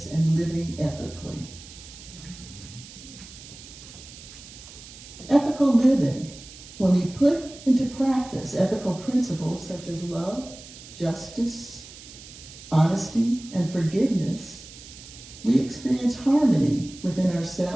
and living ethically. Ethical living. When we put into practice ethical principles such as love, justice, honesty, and forgiveness, we experience harmony within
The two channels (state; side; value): noise; right; hiss, 17 dB below the sound